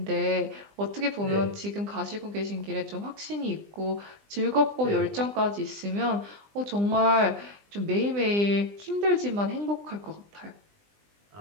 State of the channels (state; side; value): late; left; 20 ms